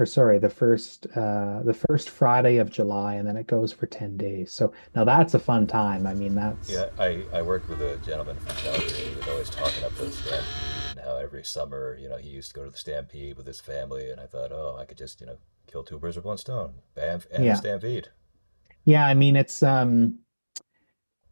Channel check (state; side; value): inverted; both; correlation -1.00